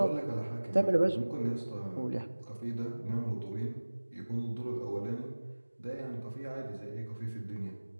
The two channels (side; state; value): both; inverted; correlation -1.00